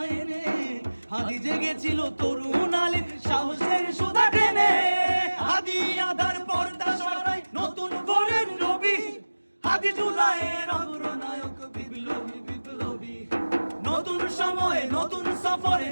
এনে, হাদি জেগেছিল তরুণ আলীর সাহসের সুধা টেনে। হাদি আধার পর্দা সরায় নতুন ভোরের রবি, হাদি জুলাইয়ের অগ্রনায়ক বিপ্লবী বিপ্লবী। নতুন সময় নতুন সফরে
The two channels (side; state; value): both; inverted; correlation -1.00